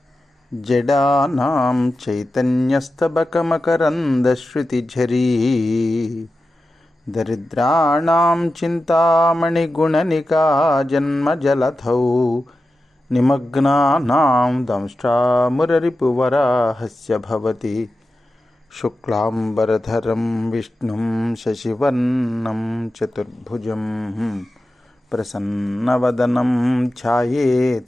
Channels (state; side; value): normal; both; correlation 0.92